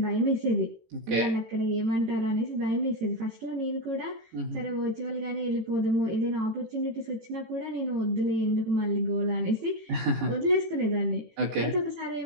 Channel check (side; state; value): left; late; 18 ms